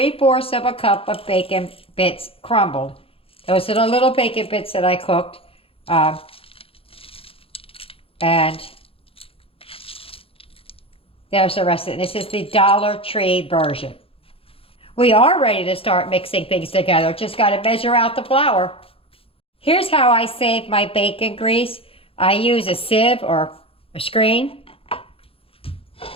of a cup of bacon bits crumbled. Those are the little bacon bits that I cooked. And There's the rest of it. This is the Dollar Tree version. We are ready to start mixing things together. Just got to measure out the flour. Here's how I save my bacon grease. I use a sieve or a screen.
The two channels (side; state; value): right; late; 0.27 ms